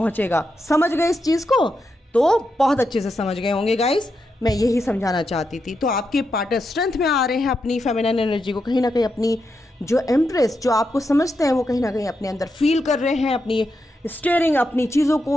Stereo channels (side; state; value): both; normal; correlation 0.85